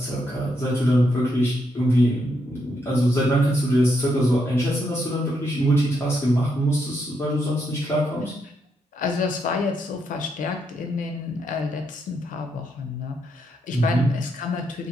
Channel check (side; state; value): both; normal; correlation 0.78